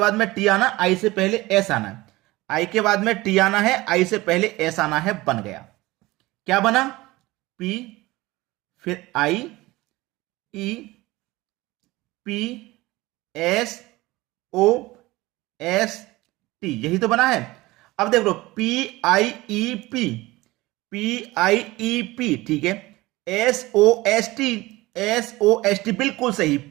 में टी आना, आई से पहले एस आना है, आई के बाद में टी आना है, आई से पहले एस आना है। बन गया, क्या बना? पी, फिर I, E, P, S, O, S, T, यही तो बना है। अब देख लो, P I E P, P I E P, ठीक है। S O S T, S O S T, बिल्कुल सही।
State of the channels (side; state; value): left; quieter; 19.9 dB